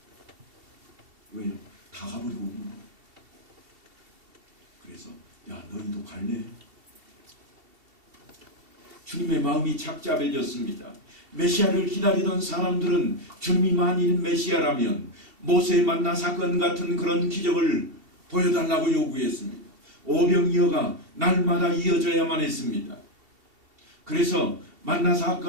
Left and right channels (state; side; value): late; left; 2.7 ms